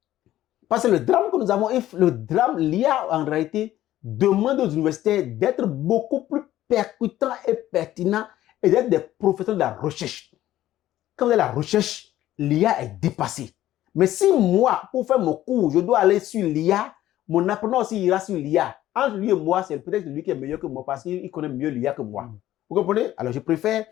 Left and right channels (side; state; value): right; quieter; 13.8 dB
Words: Parce que le drame que nous avons, l'IA en réalité demande aux universitaires d'être beaucoup plus percutants et pertinents et d'être des professeurs de la recherche. Quand vous avez la recherche, l'IA est dépassée. Mais si moi, pour faire mon cours, je dois aller sur l'IA, mon apprenant aussi ira sur l'IA. Entre lui et moi, c'est peut-être lui qui est meilleur que moi parce qu'il connaît mieux l'IA que moi. Vous comprenez? Alors je préfère